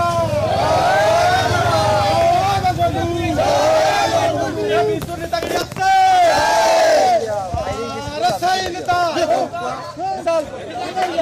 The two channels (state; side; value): identical; both; correlation 1.00